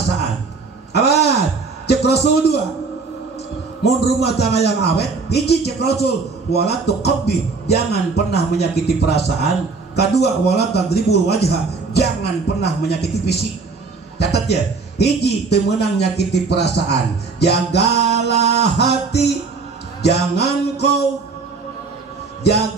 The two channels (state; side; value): quieter; left; 4.3 dB